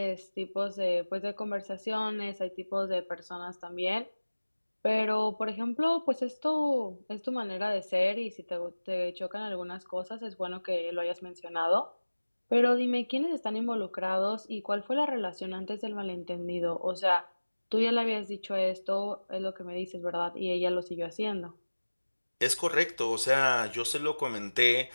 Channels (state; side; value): inverted; both; correlation -1.00